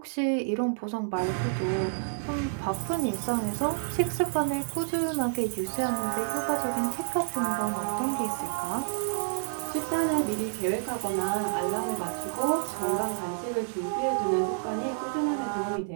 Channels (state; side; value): silent; left; digital silence